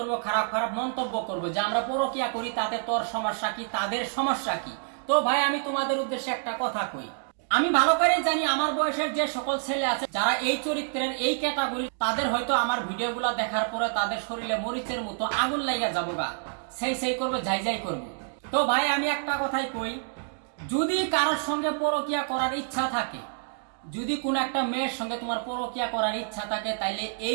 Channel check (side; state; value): left; silent; digital silence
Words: খারাপ খারাপ মন্তব্য করবো যে আমরা পরকীয়া করি তাতে তোর সমস্যা কি তাদের সমস্যা কি তো ভাই আমি তোমাদের উদ্দেশ্যে একটা কথা কই আমি ভালো করে জানি আমার বয়সের যে সকল ছেলে আছে যারা এই চরিত্রের এই ক্যাটাগরি তাদের হয়তো আমার ভিডিওগুলো দেখার পরে তাদের শরীরে মরিচের মতো আগুন লাগা যাবো গা সেই করবে যাই করবে তো ভাই আমি একটা কথাই কই যদি কারোর সঙ্গে পরকীয়া করার ইচ্ছা থাকে যদি কোন একটা মেয়ের সঙ্গে তোমার পরকীয়া করার ইচ্ছা থাকে তাইলে